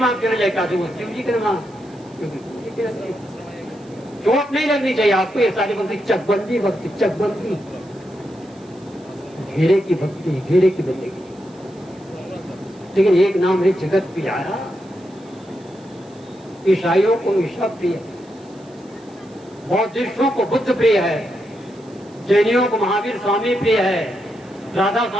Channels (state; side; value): noise; right; hiss, 29 dB below the sound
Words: आप चले जाए, काशी वो शिव जी के नाम, चोट नहीं लगनी चाहिए आपको। ये सारी भक्ति चकबंदी भक्ति, चकबंदी घेरे की भक्ति, घेरे की बंदगी। लेकिन एक नाम है जगत प्यारा। ईसाइयों को ईसा प्रिय, बौद्धिस्टों को बुद्ध प्रिय है, जैनियों को महावीर स्वामी प्रिय है, राधा